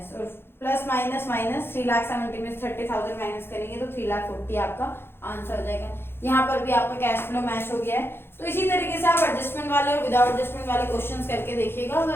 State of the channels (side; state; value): right; late; 0.11 ms